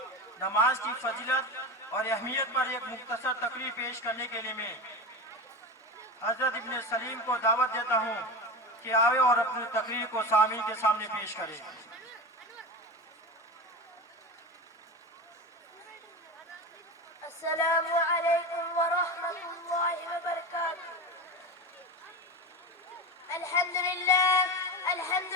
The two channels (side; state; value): both; normal; correlation 0.24